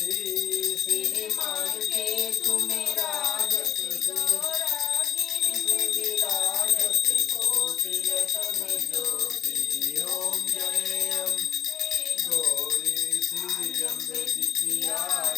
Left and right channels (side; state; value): right; quieter; 9.7 dB